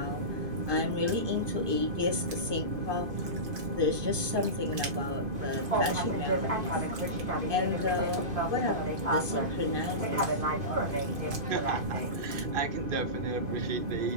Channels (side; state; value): left; late; 2.5 ms